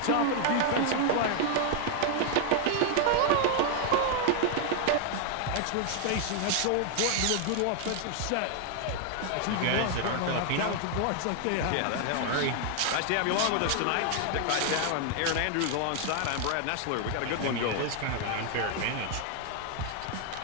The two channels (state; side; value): different; both; correlation 0.00